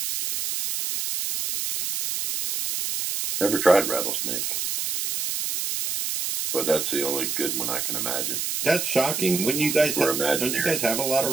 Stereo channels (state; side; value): noise; right; hiss, 2 dB below the sound